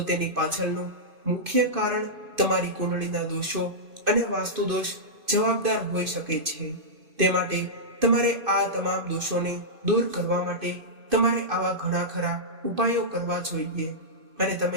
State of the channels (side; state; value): left; late; 2.5 ms